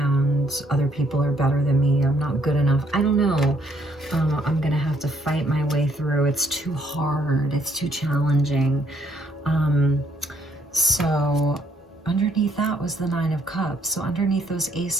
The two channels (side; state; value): both; normal; correlation 0.68